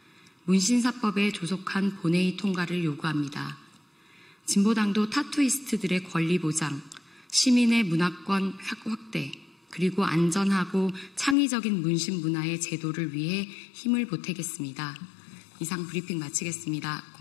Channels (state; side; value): drops out; right; at 11.4 s